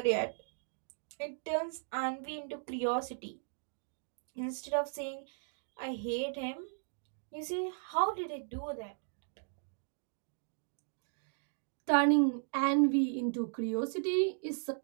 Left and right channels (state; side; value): silent; left; digital silence